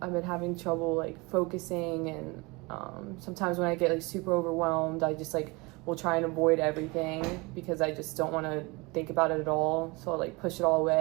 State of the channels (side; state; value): left; quieter; 26.3 dB